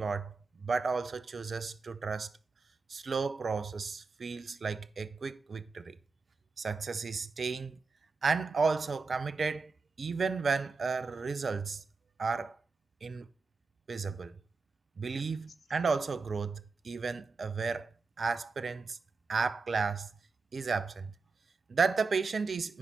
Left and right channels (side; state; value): left; quieter; 4.4 dB